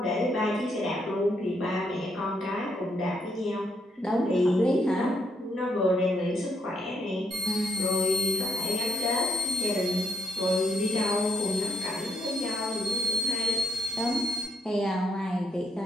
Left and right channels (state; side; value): normal; both; correlation 0.73